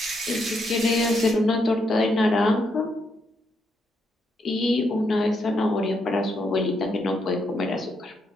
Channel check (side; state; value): both; normal; correlation 0.78